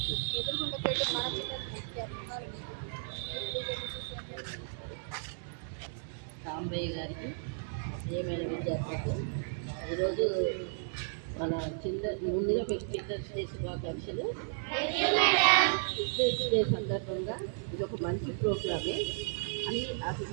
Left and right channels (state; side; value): silent; left; digital silence